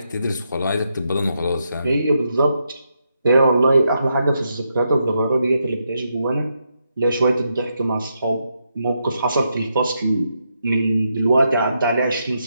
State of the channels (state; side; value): inverted; both; correlation -0.82